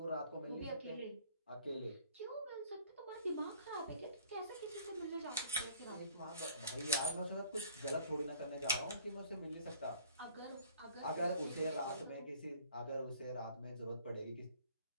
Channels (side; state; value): both; inverted; correlation -0.55